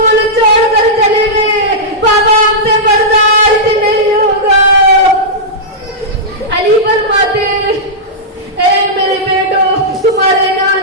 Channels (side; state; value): both; normal; correlation -0.11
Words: چھوڑ کر چلے گئے، بابا ہم سے برداشت نہیں ہوگا۔ علی فرماتے اے میرے بیٹو تمہارے